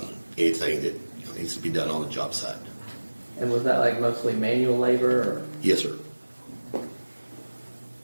anything that needs to be done on the job site. And was that like mostly manual labor, or Yes, sir.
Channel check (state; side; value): inverted; both; correlation -1.00